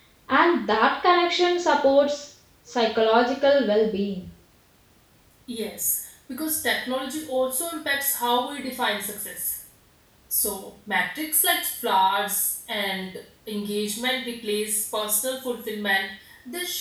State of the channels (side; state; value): both; identical; correlation 1.00